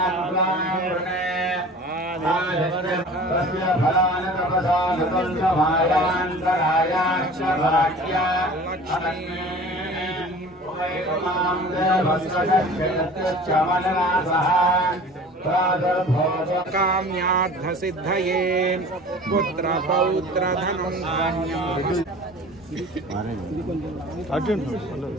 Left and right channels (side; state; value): both; normal; correlation 0.42